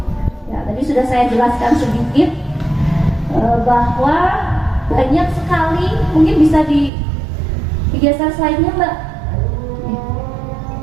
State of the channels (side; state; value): left; drops out; at 6.9 s